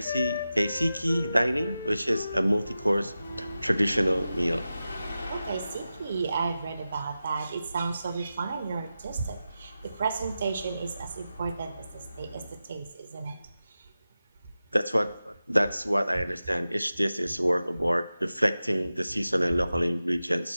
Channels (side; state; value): both; inverted; correlation -0.93